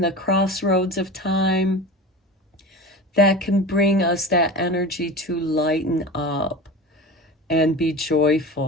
the crossroads of time, that can bring us that energy to lighten up and be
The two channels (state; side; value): normal; both; correlation 0.31